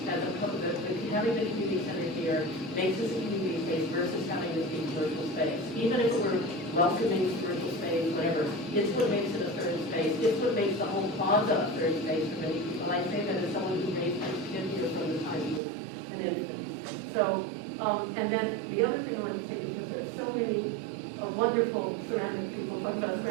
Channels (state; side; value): drops out; left; at 15.6 s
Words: as opposed to having the community center here makes this a community space versus having this be commercial space. Even if it were welcoming commercial space, whatever, it's what makes it a third space. It's what makes the whole plaza a third space for many people. I say that as someone who makes been here from the time he was an infant. So, and then the other thing I want to say, because there are so many wonderful ceramic people talking about